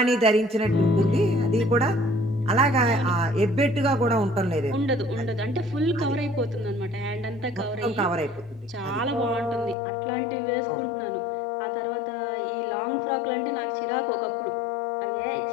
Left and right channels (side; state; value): right; drops out; at 9.8 s